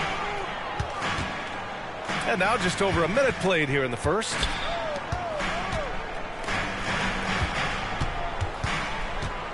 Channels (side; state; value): both; identical; correlation 1.00